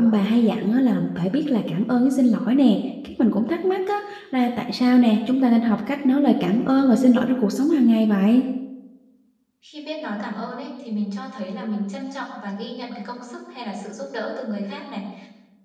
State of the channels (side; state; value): both; identical; correlation 1.00